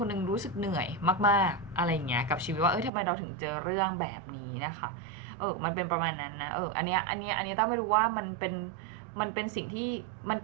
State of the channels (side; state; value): left; drops out; at 2.9 s